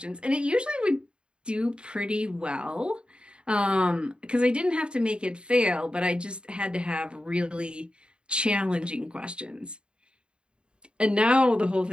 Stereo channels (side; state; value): left; late; 0.053 ms